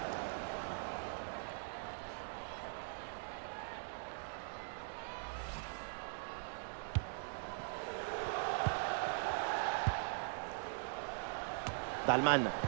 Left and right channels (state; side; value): silent; left; digital silence